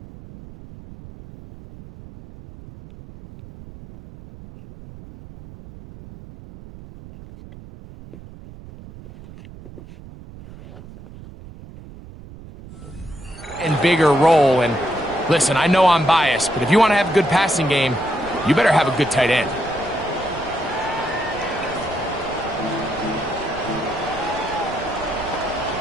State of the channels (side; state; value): right; noise; rumble, 17 dB below the sound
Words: bigger role. And listen, I know I'm biased, but if you want to have a good passing game, you better have a good tight end.